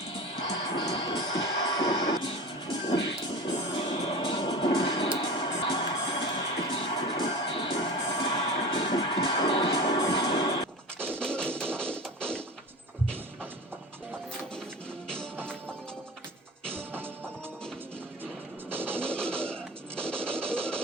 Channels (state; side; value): normal; both; correlation 0.33